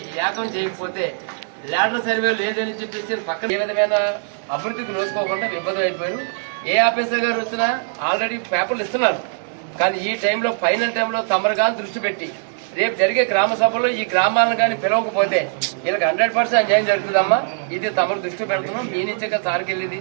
ఏకం చేయకపోతే ల్యాడర్ సర్వే లేదని చెప్పేసి పక్కన ఏ విధమైన అభివృద్ధికి నోసుకోకుండా విభజన అయిపోయారు. ఏ ఆఫీసర్ గారు వచ్చినా ఆల్రెడీ పేపర్లు ఇస్తున్నారు, కానీ ఈ టైంలో ఫైనల్ టైంలో తమరు కానీ దృష్టి పెట్టి రేపు జరిగే గ్రామ సభలో ఈ గ్రామాలను కానీ పిలవకపోతే వీళ్ళకి 100% అన్యాయం జరుగుతుందమ్మా. ఇది తమరు దృష్టి పెడుతున్నాం. మీ నుంచే కదా సార్కి వెళ్ళేది.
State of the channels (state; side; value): silent; left; digital silence